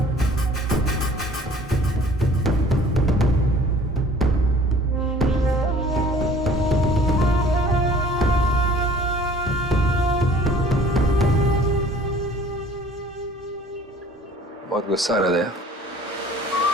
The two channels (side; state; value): both; normal; correlation 0.51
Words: बहुत गुस्सा आ रहा है।